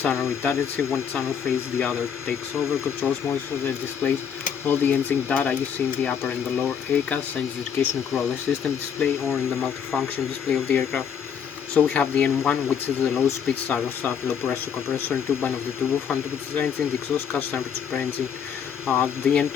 redundancy, one channel phase, the other takes over, controls most of the displays. All the engine data you see in the upper and the lower ACAS, engine education control system display, or in the multifunction display of the aircraft. So we have the N1, which is the low speed starter start, low pressure compressor and turbine of the turbofan, which is the engine, the exhaust gas temperature per engine. The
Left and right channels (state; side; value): quieter; right; 7.7 dB